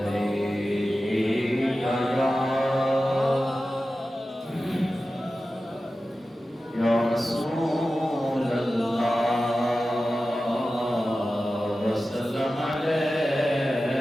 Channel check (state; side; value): normal; both; correlation 0.94